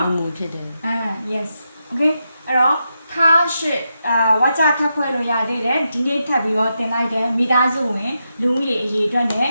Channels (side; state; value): both; inverted; correlation -0.85